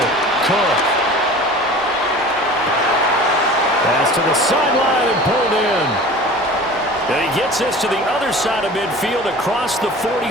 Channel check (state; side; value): normal; both; correlation 0.40